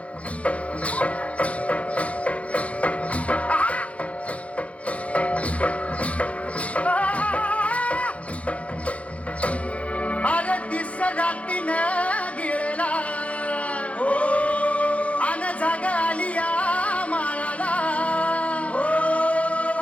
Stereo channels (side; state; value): right; late; 0.064 ms